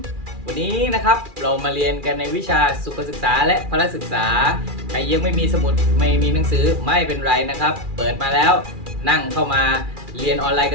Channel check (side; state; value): left; late; 2.4 ms